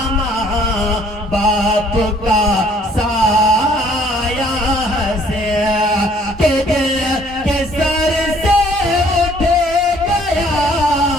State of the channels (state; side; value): normal; both; correlation 0.60